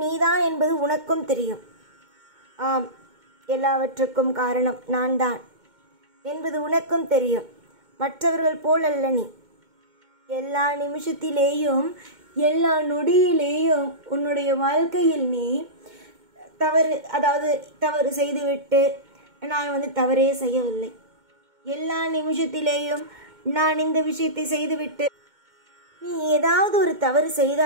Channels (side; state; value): left; late; 2.2 ms